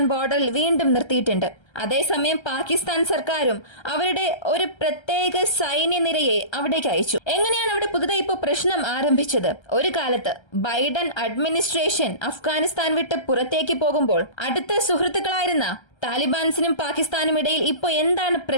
ബോർഡറിൽ വീണ്ടും നിർത്തിയിട്ടുണ്ട്. അതേസമയം പാകിസ്ഥാൻ സർക്കാരും അവരുടെ ഒരു പ്രത്യേക സൈന്യനിരയെ അവിടേക്ക് അയച്ചു. എങ്ങനെയാണ് അവിടെ പുതുതായി ഇപ്പോൾ പ്രശ്നം ആരംഭിച്ചത്? ഒരു കാലത്ത് ബൈഡൻ അഡ്മിനിസ്ട്രേഷൻ അഫ്ഗാനിസ്ഥാൻ വിട്ട് പുറത്തേക്ക് പോകുമ്പോൾ അടുത്ത സുഹൃത്തുക്കളായിരുന്ന താലിബാൻസിനും പാകിസ്ഥാനും ഇടയിൽ ഇപ്പോൾ എന്താണ്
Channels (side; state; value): right; late; 1.3 ms